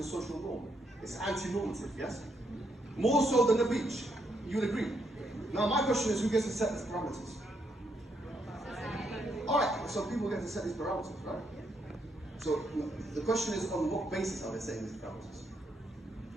social norm. It's anti-normative, yes? More so than the beach. You would agree? Now my question is, who gets to set these parameters? Alright, so people get to set these parameters, right? So the question is, on what basis are they setting these parameters?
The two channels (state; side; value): normal; both; correlation 0.76